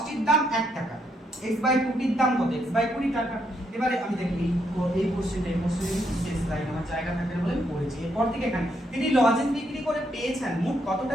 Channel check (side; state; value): both; normal; correlation 0.76